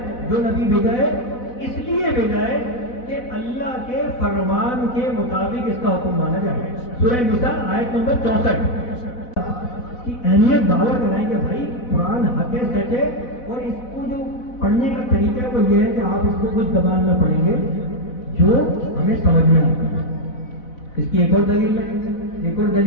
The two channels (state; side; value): late; right; 4.1 ms